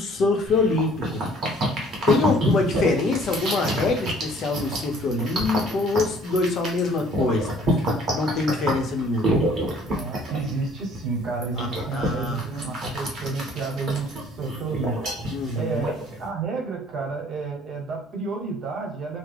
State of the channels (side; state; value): both; normal; correlation 0.56